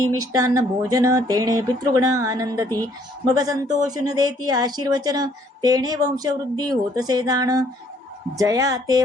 मिष्टान्न भोजन तेणे पितृगण आनंदती मग संतोषून देती आशीर्वचन तेणे वंशवृद्धी होतसे जाण जया ते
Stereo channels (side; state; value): both; normal; correlation 0.64